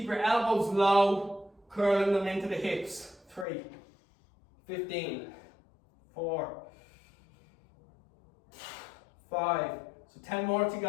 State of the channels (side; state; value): right; drops out; at 3.5 s